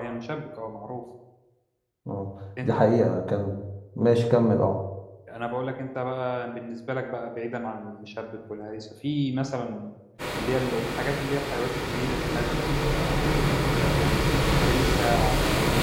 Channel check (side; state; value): both; identical; correlation 1.00